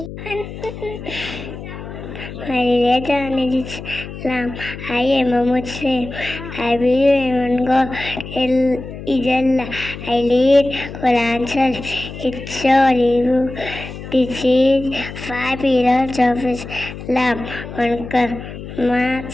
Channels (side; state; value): left; noise; hum, 11 dB below the sound